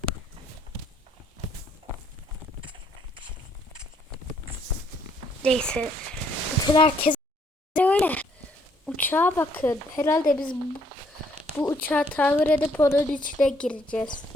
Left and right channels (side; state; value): both; normal; correlation 0.67